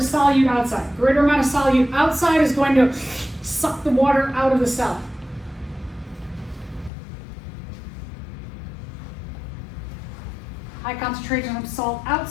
solute outside. Greater amount of solute outside is going to suck the water out of the cell. High concentration of salt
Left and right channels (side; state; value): right; drops out; at 6.9 s